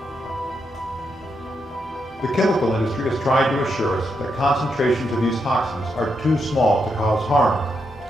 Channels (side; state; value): both; normal; correlation 0.82